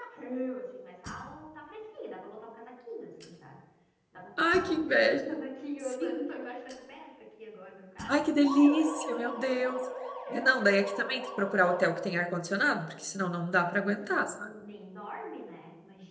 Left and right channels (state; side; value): identical; both; correlation 1.00